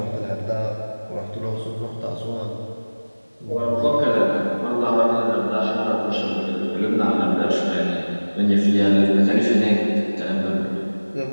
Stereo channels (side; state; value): both; inverted; correlation -1.00